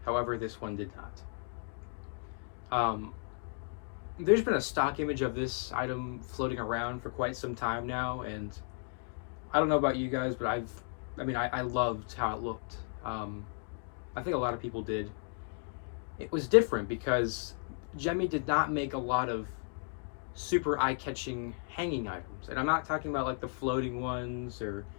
however this one did not. There's been a stock image of this item floating around for quite some time now, and I don't know about you guys, but I loved how it looked. I think a lot of people did. It was different because Gemmy did not make a lot of super eye-catching hanging items, and I'm not talking about like the floating ones or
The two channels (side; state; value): right; silent; 55 dB below the other